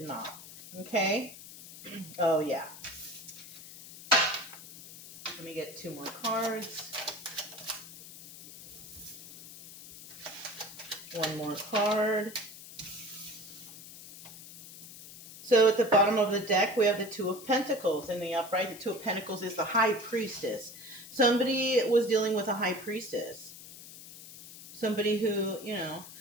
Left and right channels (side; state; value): left; noise; hiss, 15 dB below the sound